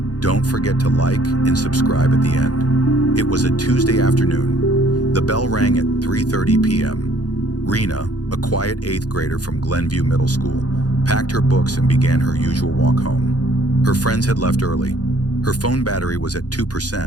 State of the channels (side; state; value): right; late; 0.68 ms